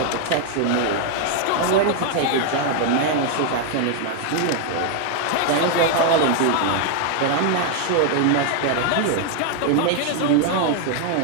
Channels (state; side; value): different; both; correlation 0.00